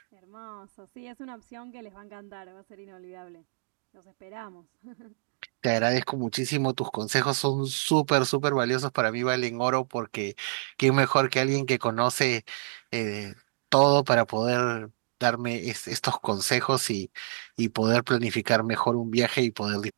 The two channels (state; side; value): silent; left; digital silence